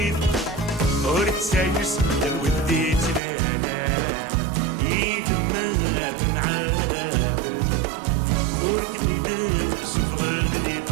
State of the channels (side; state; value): left; drops out; at 3.2 s